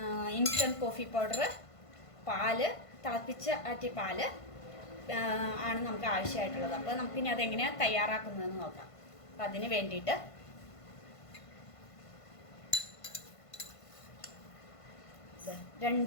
ഇൻസ്റ്റൻറ്റ് കോഫി പൗഡർ, പാല്, തിളപ്പിച്ച ആറ്റിയ പാല് ആണ് നമുക്ക് ആവശ്യമായിട്ടുള്ളത്. അപ്പോൾ നമുക്കിനി അതെങ്ങനെയാണ് തയ്യാറാക്കുന്നതെന്ന് നോക്കാം. അപ്പോൾ അതിന് വേണ്ടിയിട്ട്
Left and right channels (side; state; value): right; late; 1.5 ms